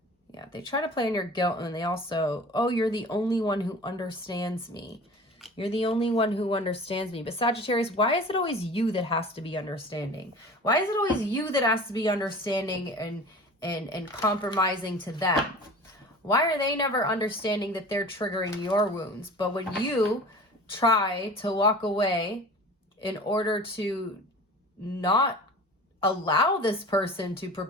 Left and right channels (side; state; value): both; normal; correlation 0.40